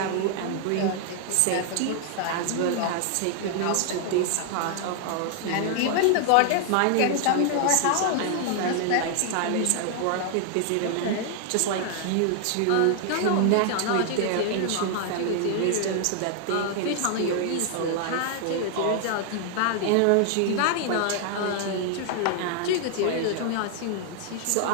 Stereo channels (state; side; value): different; both; correlation 0.00